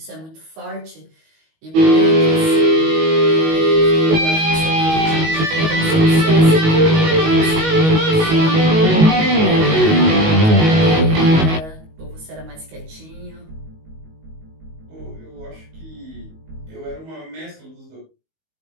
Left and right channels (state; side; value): late; left; 19 ms